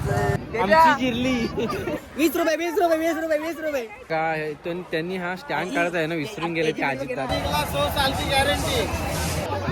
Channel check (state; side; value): identical; both; correlation 1.00